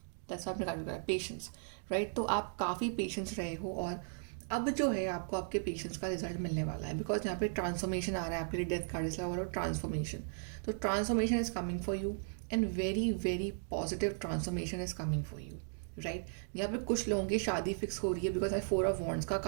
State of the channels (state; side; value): silent; left; digital silence